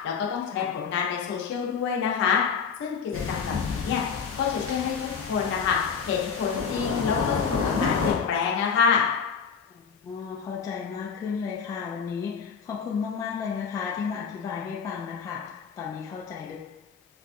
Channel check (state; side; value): quieter; right; 6.2 dB